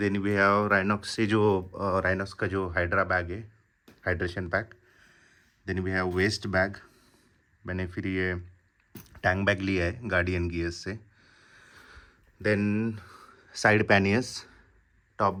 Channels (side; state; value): both; identical; correlation 1.00